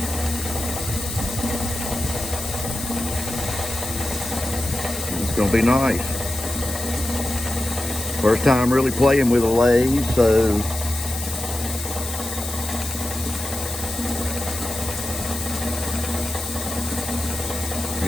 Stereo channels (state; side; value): noise; left; hiss, 8 dB below the sound